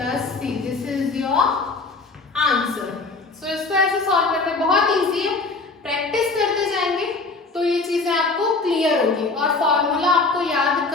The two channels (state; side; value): quieter; right; 3.8 dB